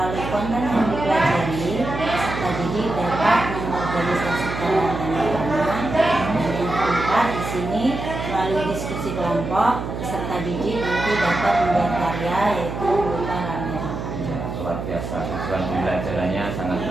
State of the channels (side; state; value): right; noise; hum, 6 dB below the sound